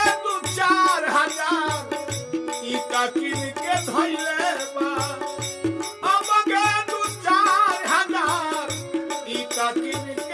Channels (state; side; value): identical; both; correlation 1.00